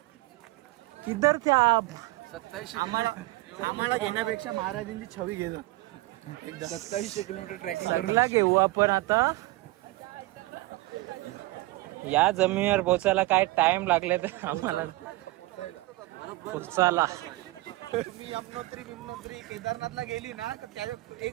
किधर थे आप? 27 आम्हाला घेण्यापेक्षा महाराजांची छवी घेतो. 2700 किलोमीटर ट्रॅकिंग सगळा घेऊ आपण आता. या जमिनीवर पोचायला काय टाइम लागले तर आम्हाला पोचायला. मी यमुनोत्री केदारनाथला गेली ना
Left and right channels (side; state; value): left; quieter; 19.8 dB